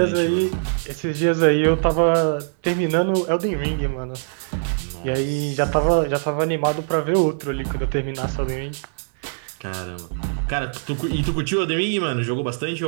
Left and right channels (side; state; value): left; silent; digital silence